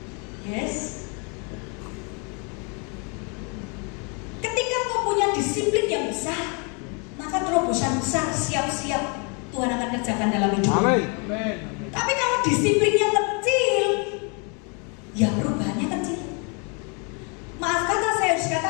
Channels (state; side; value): quieter; right; 35.2 dB